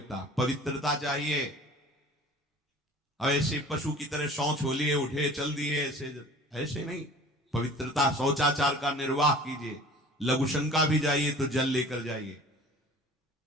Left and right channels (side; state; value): both; normal; correlation 0.44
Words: पवित्रता चाहिए। अब ऐसे पशु की तरह शौच हो लिए, उठे चल दिए, ऐसे नहीं। पवित्रता, शौचाचार का निर्वाह कीजिए। लघुशंका भी जाइए तो जल लेकर जाइए।